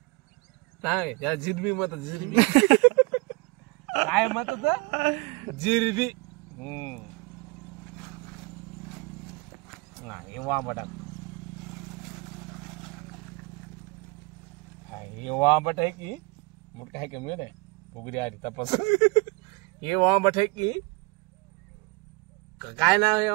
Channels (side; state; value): left; quieter; 26.1 dB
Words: सांग त्याला जिरबी म्हणतात जिरबी काय म्हणतात जिरबी हे वांबटा हे वांबट आहे की मोठं आहे का मिळत आहे फुगडी आधी तपास हे वांबट आहे की काय नाव आहे